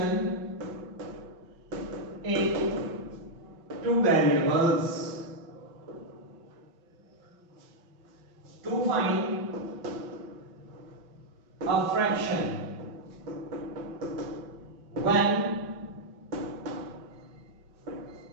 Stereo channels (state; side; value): late; left; 6.0 ms